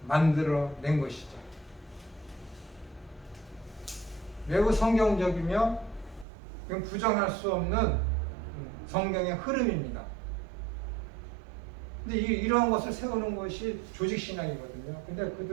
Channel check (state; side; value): drops out; left; at 6.2 s